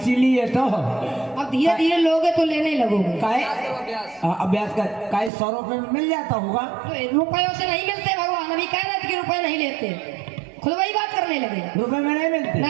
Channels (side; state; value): left; drops out; at 5.3 s